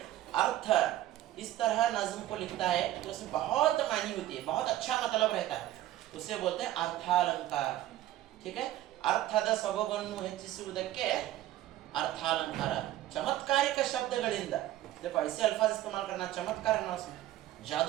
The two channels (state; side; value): quieter; left; 14.1 dB